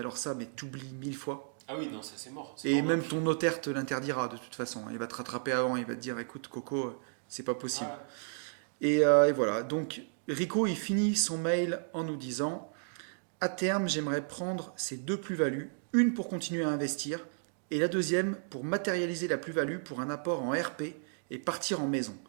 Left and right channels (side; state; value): left; silent; digital silence